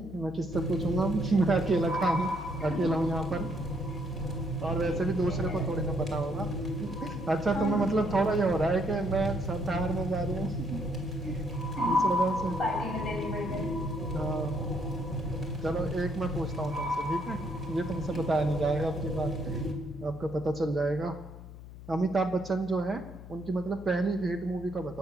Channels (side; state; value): left; noise; hum, 15 dB below the sound